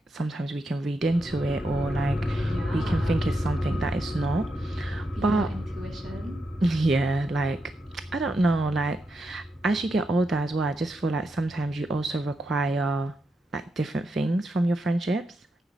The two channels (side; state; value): both; normal; correlation 0.85